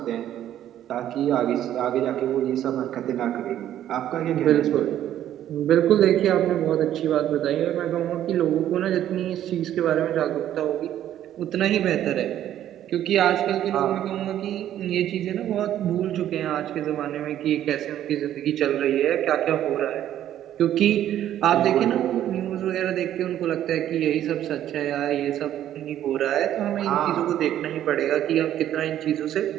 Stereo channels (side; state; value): left; quieter; 11.6 dB